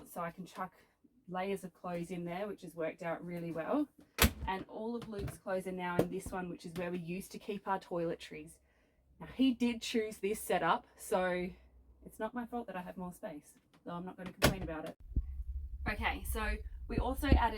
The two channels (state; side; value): identical; both; correlation 1.00